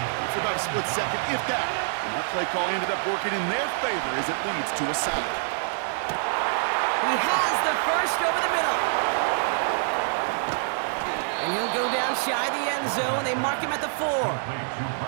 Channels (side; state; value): left; silent; 61 dB below the other